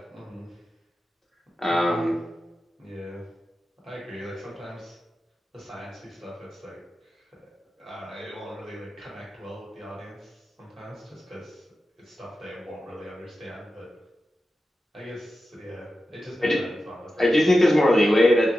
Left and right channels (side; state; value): both; normal; correlation 0.92